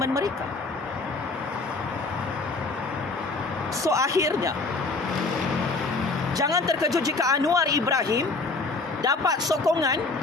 mereka. So akhirnya, jangan terkejut jika Anwar Ibrahim dapat sokongan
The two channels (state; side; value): quieter; right; 3.6 dB